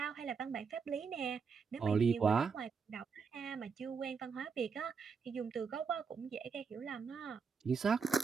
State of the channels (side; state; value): left; quieter; 5.6 dB